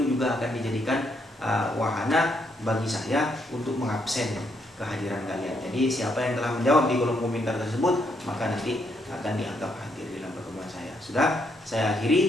juga akan dijadikan wahana bagi saya untuk mengabsen kehadiran kalian. Jadi siapa yang telah menjawab di kolom komentar tersebut, maka nanti akan dianggap hadir dalam pertemuan saya. Sudah, saya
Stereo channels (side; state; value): both; normal; correlation 0.75